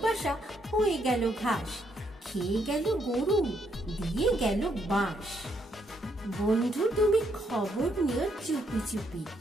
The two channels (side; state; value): both; normal; correlation 0.74